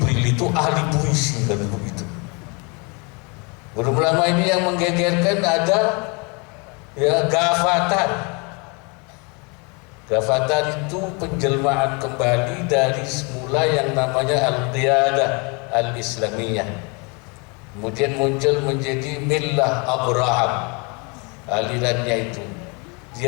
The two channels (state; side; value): quieter; right; 31.4 dB